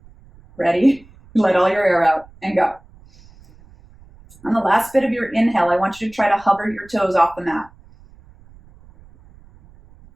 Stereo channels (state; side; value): noise; right; rumble, 26 dB below the sound